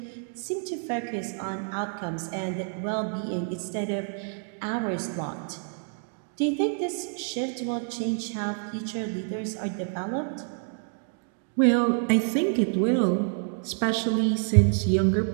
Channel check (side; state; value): left; silent; 59 dB below the other